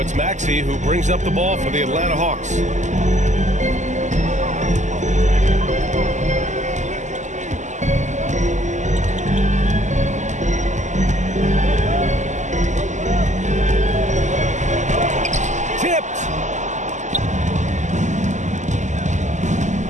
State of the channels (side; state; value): left; late; 0.34 ms